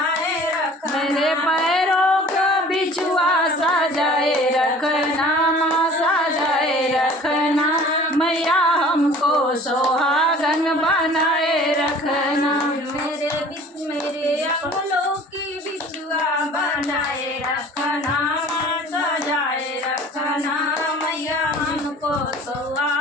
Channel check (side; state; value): both; normal; correlation 0.47